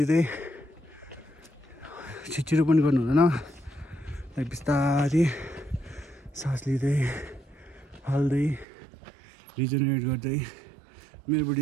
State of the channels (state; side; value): drops out; left; at 8.7 s